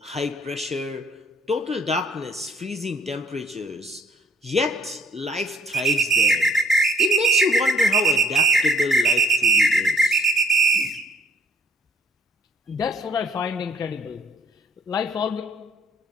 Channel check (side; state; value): both; normal; correlation 0.60